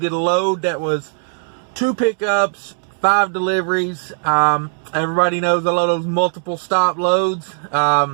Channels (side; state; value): left; silent; 67 dB below the other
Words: a load that was 2 pickups, 5 deliveries. Everybody knows I love those multiple stop loads.